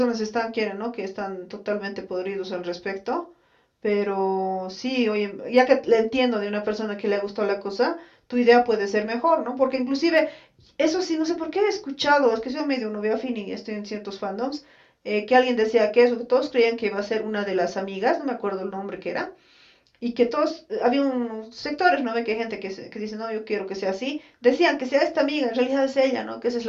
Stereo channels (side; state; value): both; identical; correlation 1.00